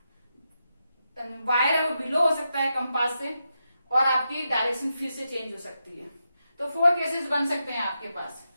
वायर है वो बिलो हो सकता है कंपास से, और आपकी डायरेक्शन फिर से चेंज हो सकती है। तो 4 केसेस बन सकते हैं आपके पास।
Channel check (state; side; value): inverted; both; correlation -0.86